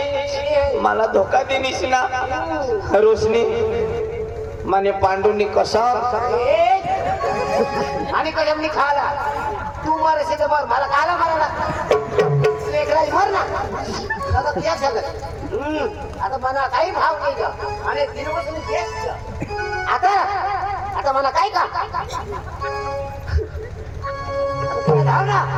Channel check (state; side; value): identical; both; correlation 1.00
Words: मला धोका देनीस ना रोशनी माने पांडुनी कसा आणि कदमनी खाला तू मर असे तर मला खाला मारायला लेकराई मर ना आता त्या सगळं आता मला काही भाव नाही का आणि दिनपासून तेच आता आता मला काय का धाव